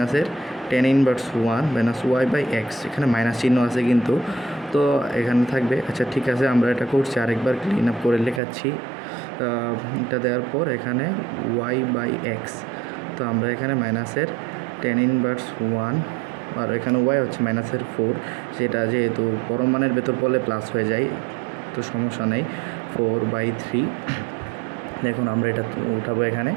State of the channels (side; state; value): left; drops out; at 8.4 s